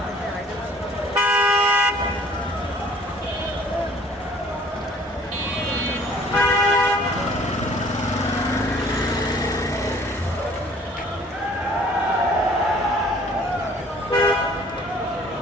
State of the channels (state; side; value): normal; both; correlation 0.54